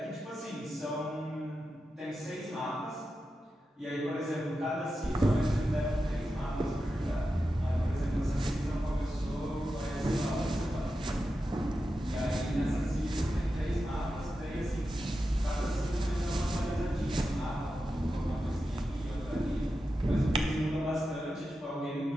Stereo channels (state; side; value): normal; both; correlation 0.90